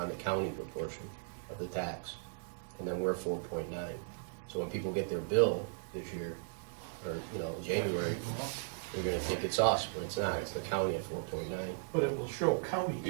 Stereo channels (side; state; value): left; silent; digital silence